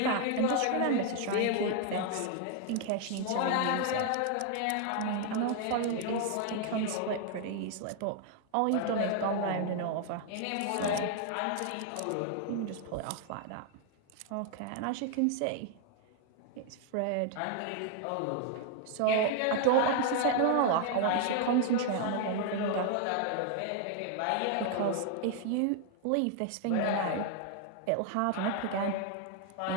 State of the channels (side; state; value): both; different; correlation 0.00